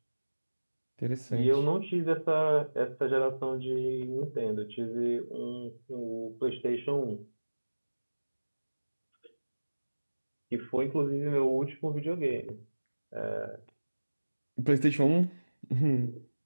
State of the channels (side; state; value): both; inverted; correlation -1.00